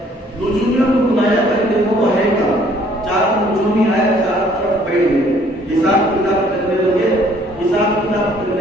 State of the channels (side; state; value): both; normal; correlation 0.60